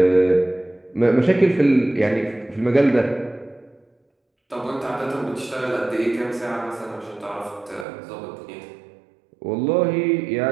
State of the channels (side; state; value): left; drops out; at 7.9 s